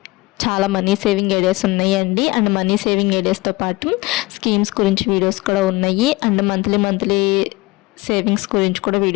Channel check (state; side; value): quieter; right; 22.3 dB